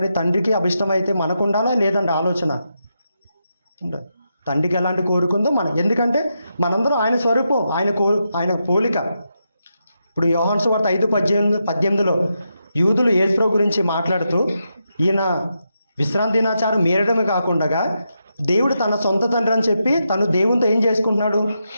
తండ్రికి అభిష్టమైతే మనకు ఉండాలా లేదండి ఆలోచన? తండ్రికి ఎలాంటి కోరుకుందో మనం, ఎందుకంటే మనందరం ఆయన స్వరూపం, ఆయన పోలిక. ఇప్పుడు యోహాను సువార్త 5:18 యూదులు యేసుప్రభు గురించి మాట్లాడుతూ, ఈయన విశ్రాంతి దినాచారం మీరడమే కాకుండా దేవుడు తన సొంత తండ్రి అని చెప్పి తను దేవునితో ఏం చేసుకుంటున్నాడు?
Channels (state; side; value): inverted; both; correlation -0.85